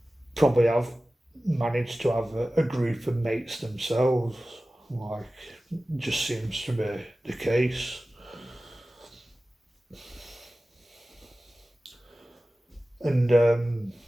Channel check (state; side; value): normal; both; correlation 0.96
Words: probably have managed to have a group of mates themselves. Like, just seems to be the case. And